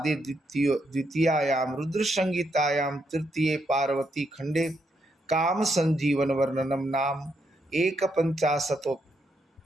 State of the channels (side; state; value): both; normal; correlation 0.79